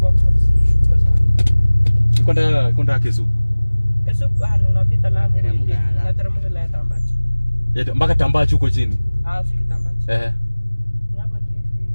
sana. Kwenda Kesu. Kesu unapita Lamu, unateremka la Tambachi. Mpaka Tambachi huko chini. Fiki Tambachi.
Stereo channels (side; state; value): both; inverted; correlation -1.00